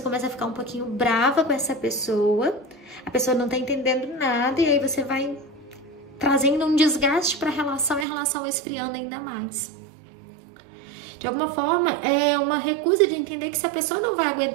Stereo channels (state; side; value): drops out; left; at 8.1 s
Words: começa a ficar um pouquinho brava com essa pessoa. A pessoa não tá entendendo nada e aí você vai trazendo um desgaste para a relação e a relação vai esfriando ainda mais. De alguma forma, é uma recusa de entender que se a pessoa não vai